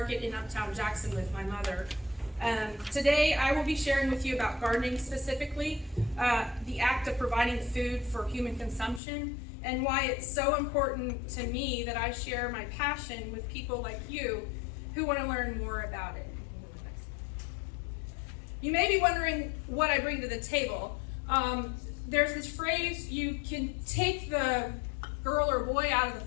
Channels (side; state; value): right; drops out; at 9.0 s